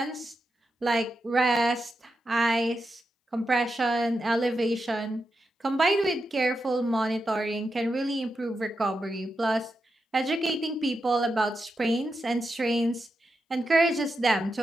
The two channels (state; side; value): normal; both; correlation 0.87